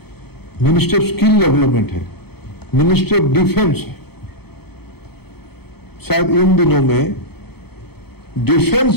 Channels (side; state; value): right; late; 0.96 ms